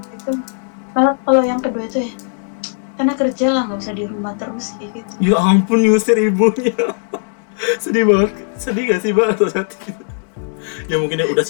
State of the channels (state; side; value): silent; right; digital silence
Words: Kalau yang kedua itu ya, karena kerja lah, nggak usah di rumah terus kayak gitu. Ya ampun, nyusir ibunya. Sedih banget. Sedih gak sih Mbak atau saat itu? Ya mungkin udah